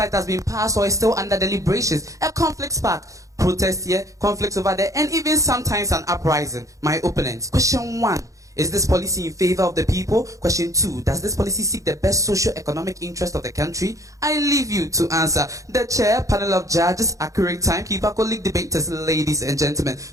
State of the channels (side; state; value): left; late; 0.16 ms